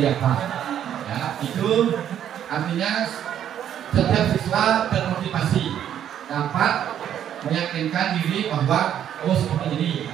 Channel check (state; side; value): quieter; left; 10.1 dB